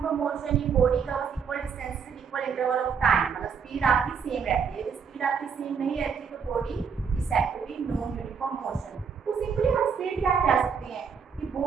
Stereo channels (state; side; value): quieter; left; 6.5 dB